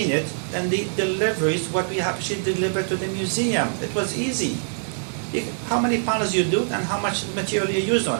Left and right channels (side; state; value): left; silent; digital silence